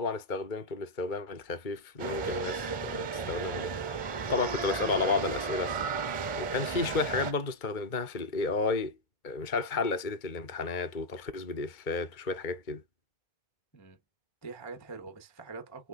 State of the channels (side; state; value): right; late; 2.2 ms